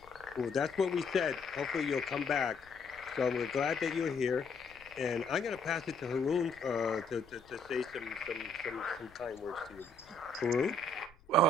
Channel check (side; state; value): left; noise; rumble, 27 dB below the sound